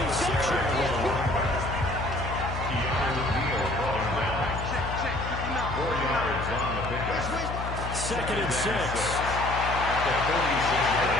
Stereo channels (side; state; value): left; noise; hum, 6 dB below the sound